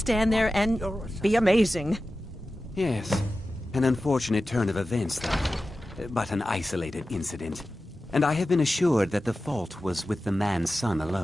there and be amazing. Yes. An unfortunate turn of events, though. But an isolated incident. And I have been assured that the fault was with the man's son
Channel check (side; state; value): both; normal; correlation 0.94